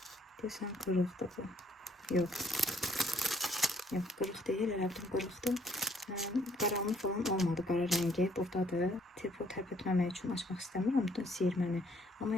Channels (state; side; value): normal; both; correlation 0.65